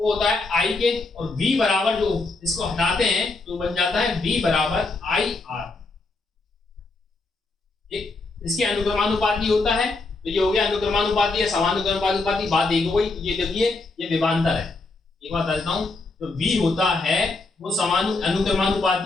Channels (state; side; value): quieter; right; 3.4 dB